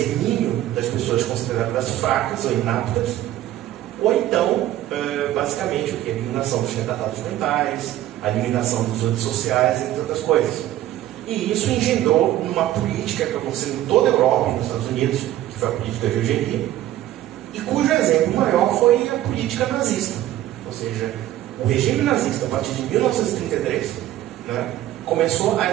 das pessoas consideradas fracas ou inaptas, ou então, basicamente, o quê? A eliminação dos retardados mentais, a eliminação dos antissociais, entre outras coisas. E isso engendrou numa política que aconteceu em toda a Europa e nos Estados Unidos, que foi a política de eugenia, e cujo exemplo maior foi a política nazista. Ou seja, o regime nazista, a partir de 1933, né, começou a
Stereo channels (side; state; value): left; quieter; 13.5 dB